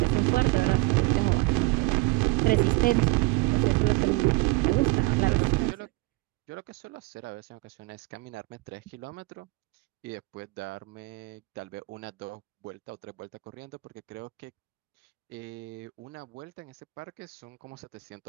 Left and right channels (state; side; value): quieter; left; 23.3 dB